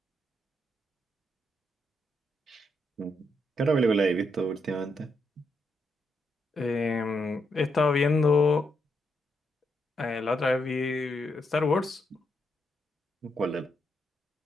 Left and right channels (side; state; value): both; normal; correlation 0.79